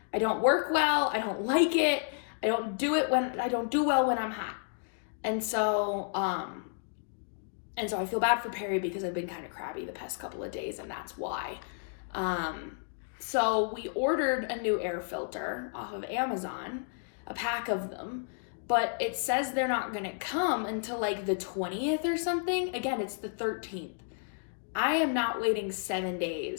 work well. I don't like it. I don't do well when I'm hot. And so I feel bad for Perry because I've been kind of crabby the past couple of days, and that's why. So we ordered a new air filter off of Amazon, a pack of them, but it says they're not going to come until like the 20th or something. Again, it's the 13th. I am not waiting 7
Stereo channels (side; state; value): right; silent; digital silence